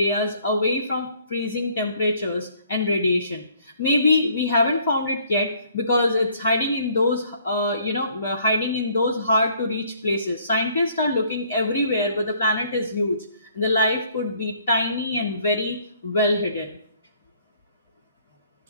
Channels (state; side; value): inverted; both; correlation -0.61